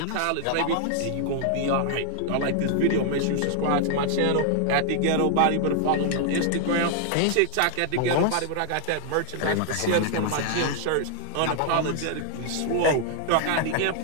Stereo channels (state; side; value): different; both; correlation 0.00